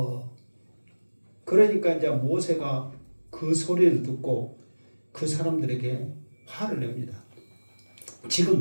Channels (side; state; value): both; inverted; correlation -1.00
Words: 그러니까 이제 모세가 그 소리를 듣고 그 사람들에게 화를 냅니다.